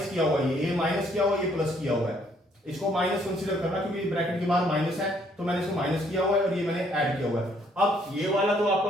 किया हुआ है, ये माइनस किया हुआ है, ये प्लस किया हुआ है, इसको माइनस कंसीडर करना क्योंकि ब्रैकेट के बाहर माइनस है, तो मैंने इसको माइनस किया हुआ है और ये मैंने ऐड किया हुआ है। अब ये वाला तो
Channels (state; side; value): normal; both; correlation 0.66